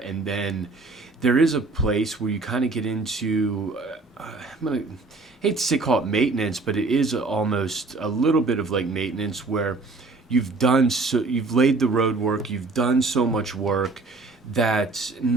then there is a place where you kind of get into, hate to say call it maintenance, but it is almost a little bit of like maintenance, where you've laid the road work, you've done so much work that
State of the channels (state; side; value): quieter; left; 3.5 dB